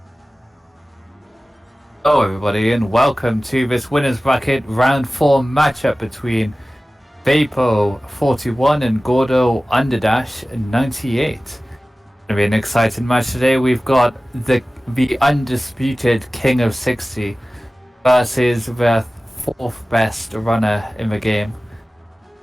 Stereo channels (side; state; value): both; normal; correlation 0.97